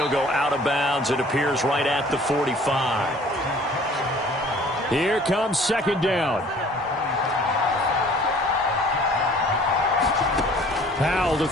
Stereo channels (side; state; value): both; normal; correlation 0.52